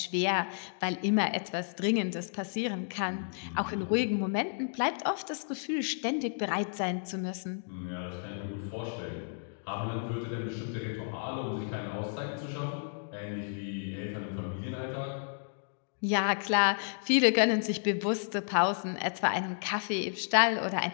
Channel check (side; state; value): right; silent; digital silence